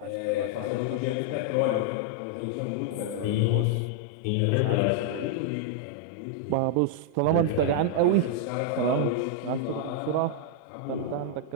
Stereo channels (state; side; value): different; both; correlation -0.01